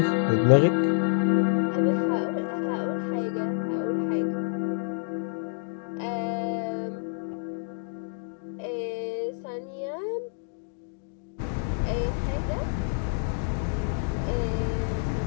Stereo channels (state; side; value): silent; right; digital silence